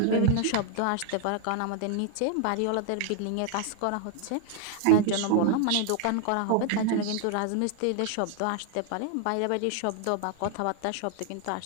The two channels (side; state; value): both; different; correlation 0.00